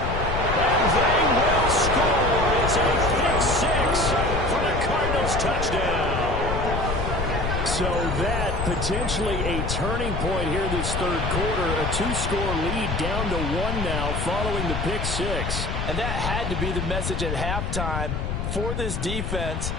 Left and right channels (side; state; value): left; noise; rumble, 2 dB below the sound